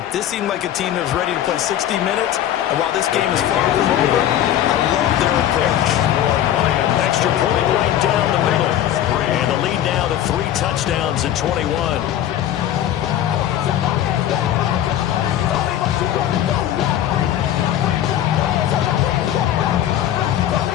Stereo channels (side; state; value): right; quieter; 11.5 dB